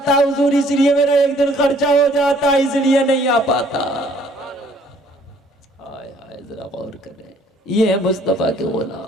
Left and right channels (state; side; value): normal; both; correlation 0.60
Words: है। हुजूर इसलिए मेरा एक दिन खर्चा हो जाता है, इसलिए नहीं आ पाता। हाय हाय जरा गौर करें, ये है मुस्तफा के